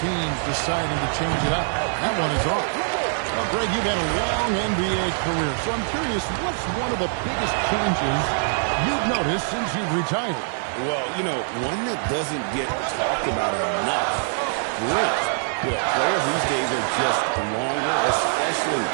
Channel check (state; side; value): silent; left; digital silence